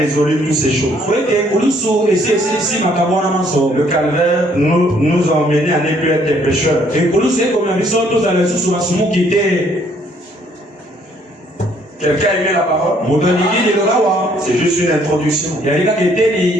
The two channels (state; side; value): normal; both; correlation 0.65